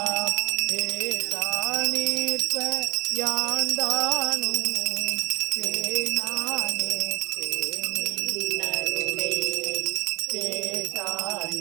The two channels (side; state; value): left; quieter; 25.9 dB